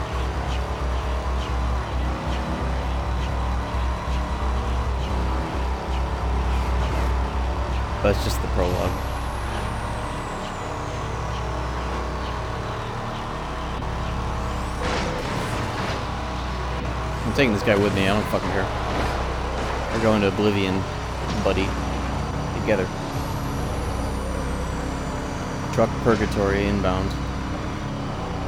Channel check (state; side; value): identical; both; correlation 1.00